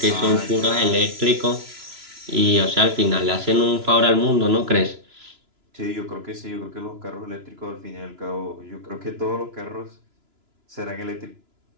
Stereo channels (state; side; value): late; left; 3.0 ms